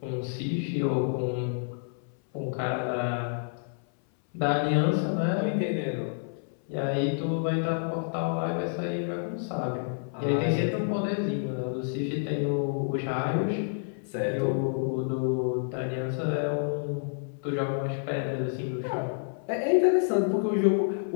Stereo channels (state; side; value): silent; right; 59 dB below the other